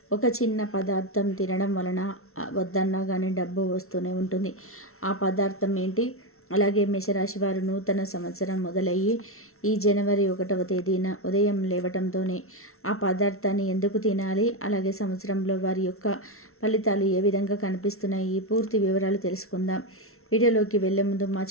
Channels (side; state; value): right; late; 0.62 ms